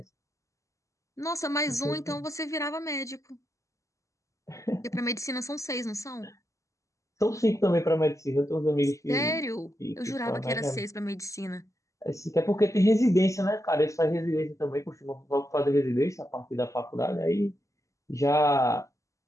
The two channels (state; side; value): late; right; 0.15 ms